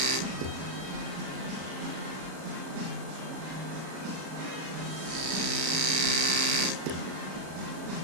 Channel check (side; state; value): left; late; 37 ms